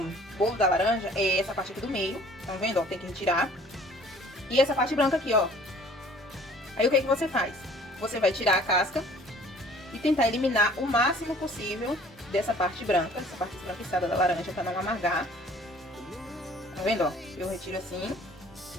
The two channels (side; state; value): both; normal; correlation 0.53